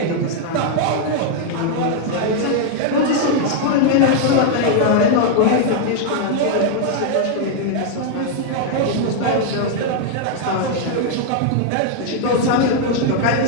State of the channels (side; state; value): both; different; correlation 0.00